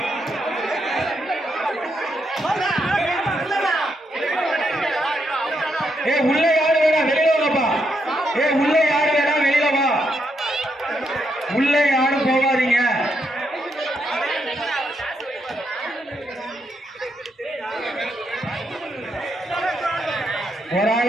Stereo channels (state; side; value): normal; both; correlation 0.79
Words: ஏ உள்ள யாரு வேணா வெளியில வாப்பா. ஏ உள்ள யாரு வேணா வெளியில வா. உள்ள யாரும் போகாதீங்க. ஒரு